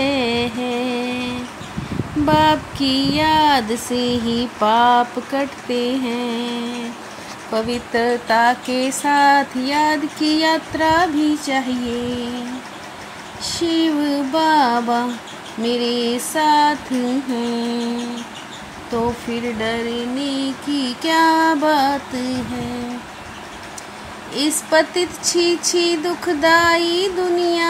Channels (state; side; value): identical; both; correlation 1.00